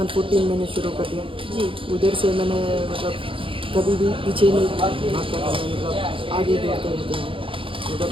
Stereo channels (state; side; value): late; left; 0.25 ms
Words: मैंने शुरू कर दिया। जी, उधर से मैंने मतलब कभी भी पीछे नहीं भागता था मैं, मतलब आगे दौड़ते रहते हैं। मतलब